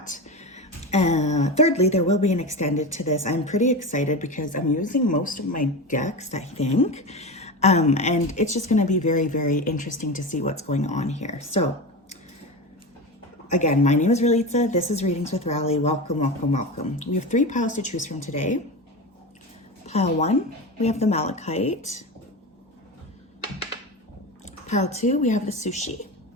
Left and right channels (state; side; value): normal; both; correlation 0.24